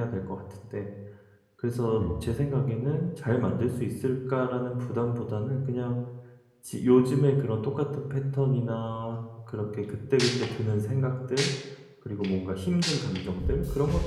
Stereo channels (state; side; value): identical; both; correlation 1.00